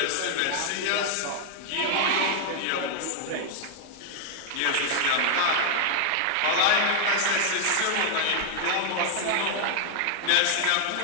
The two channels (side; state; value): both; different; correlation 0.00